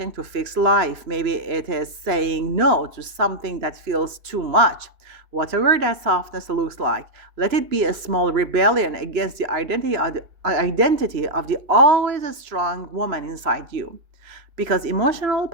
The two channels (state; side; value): late; left; 2.9 ms